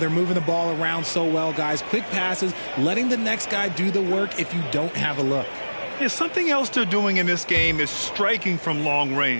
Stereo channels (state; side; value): inverted; both; correlation -1.00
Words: moving the ball around so well, guys. Quick passes, letting the next guy do the work if you don't have a look. Yeah, something else they're doing in this game is striking from long